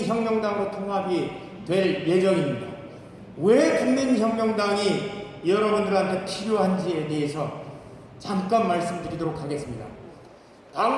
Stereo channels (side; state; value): both; identical; correlation 1.00